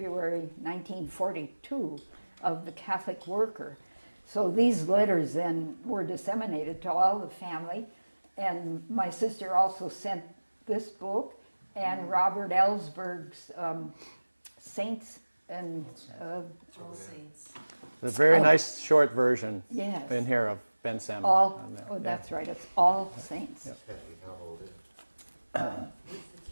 1942 of the Catholic worker. So these letters then were disseminated to all the family. And my sister also sent this book and Robert Ellsberg's Saints and... All Saints. There's a very nice short version Yes. in here of Ben Salmon. That's right. It's All Saints.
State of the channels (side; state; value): both; inverted; correlation -1.00